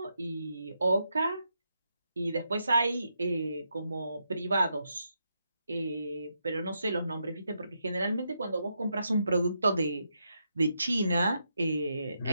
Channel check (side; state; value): both; inverted; correlation -0.82